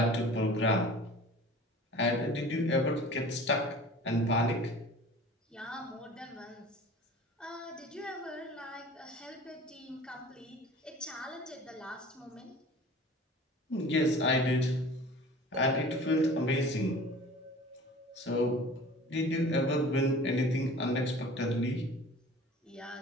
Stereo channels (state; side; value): normal; both; correlation 0.43